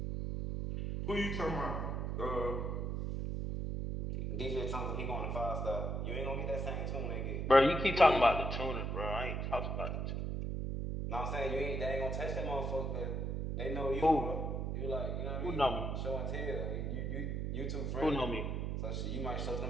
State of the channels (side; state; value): right; noise; hum, 1 dB below the sound